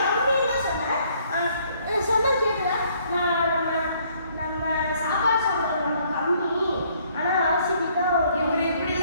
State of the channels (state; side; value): inverted; both; correlation -0.64